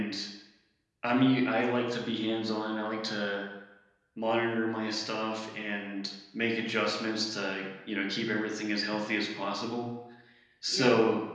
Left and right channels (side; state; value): both; identical; correlation 1.00